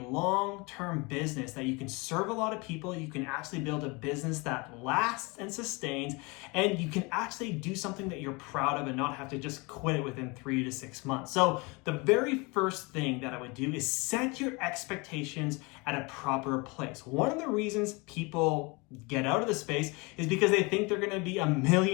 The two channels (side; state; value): right; quieter; 27.4 dB